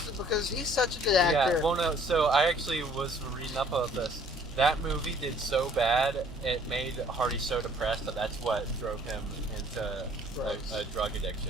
because he's such a good actor. Yeah, well no, so I actually was reading up about this. That movie did so bad, it made Hardy so depressed that that's what drove him into a drug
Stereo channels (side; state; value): both; normal; correlation 0.58